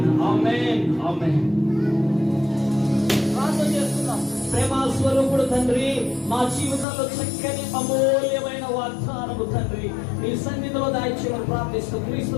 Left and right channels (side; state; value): right; drops out; at 6.9 s